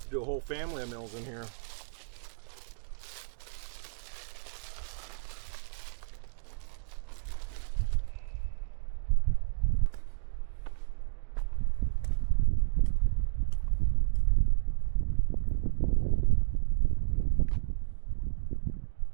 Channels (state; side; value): silent; left; digital silence